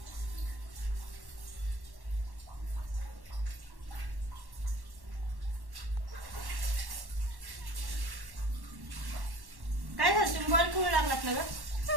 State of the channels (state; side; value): late; left; 1.1 ms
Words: काय झालं, तुम्ही बॉल खेळू लागलात ना ग?